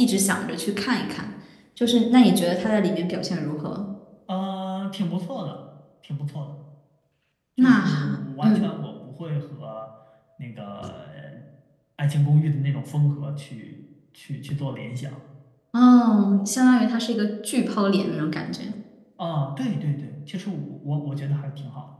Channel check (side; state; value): both; identical; correlation 1.00